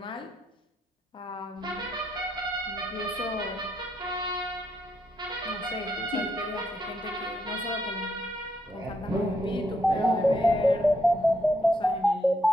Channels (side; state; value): both; normal; correlation 0.77